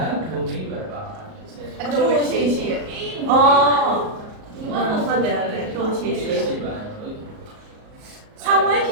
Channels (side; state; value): left; late; 37 ms